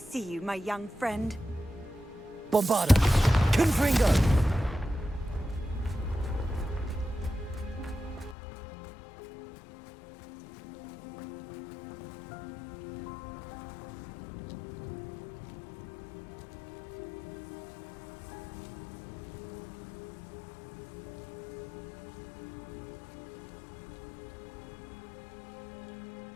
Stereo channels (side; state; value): right; drops out; at 8.3 s